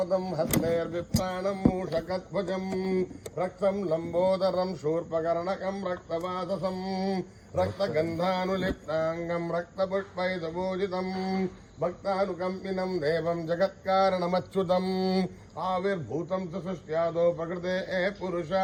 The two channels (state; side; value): identical; both; correlation 1.00